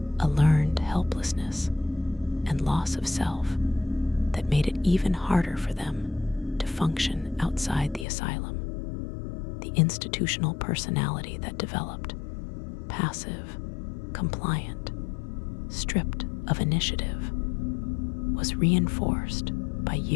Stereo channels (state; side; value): drops out; right; at 8.1 s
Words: a learned helplessness and loss of self that made it even harder for them to function outside the asylum. The institutional personality that developed, passive, compliant, stripped of initiative, was reinforced by